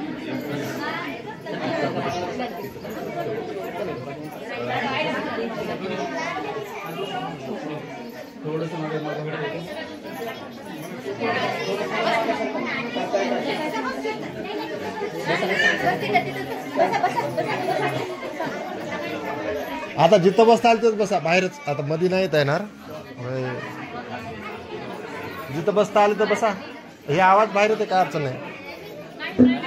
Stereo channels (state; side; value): identical; both; correlation 1.00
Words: थोडस आता जिथं बसता आलं तिथं बसा, बाहेरच आता मध्ये नाही येणार. जिथं बसता आलं तर बसा. हे आवाज बाहेर येते, काय अडचण नाही.